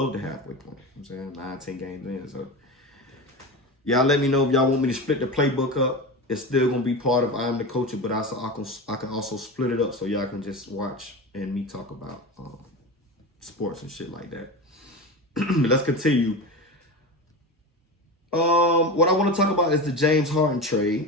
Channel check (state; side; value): normal; both; correlation 0.26